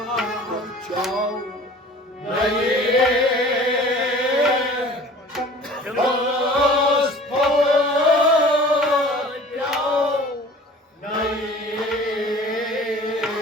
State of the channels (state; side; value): normal; both; correlation 0.45